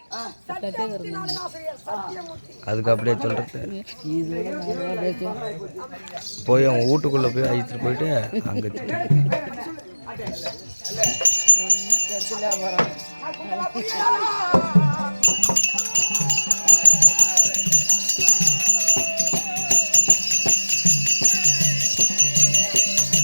அதுக்கு அப்படியே சொல்றது போய் அவங்க வீட்டுக்குள்ள போய் அழைச்சிட்டு போயிட்டு அங்க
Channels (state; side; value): inverted; both; correlation -1.00